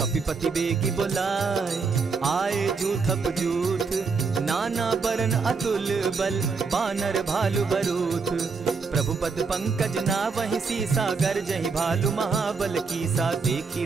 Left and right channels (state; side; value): quieter; left; 4.8 dB